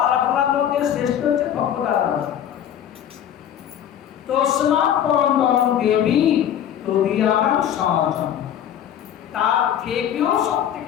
আরাধনার মধ্যে শ্রেষ্ঠ হচ্ছে ভগবত আরাধনা। তস্মাৎ পরম পরম দেবী তদীয়ানাং সমাজম, তার থেকেও সব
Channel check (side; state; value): right; quieter; 10.0 dB